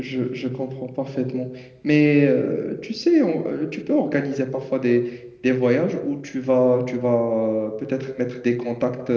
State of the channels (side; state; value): both; identical; correlation 1.00